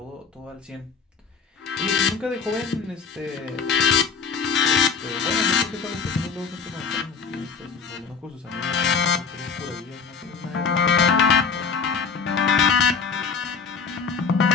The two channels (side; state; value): right; quieter; 5.8 dB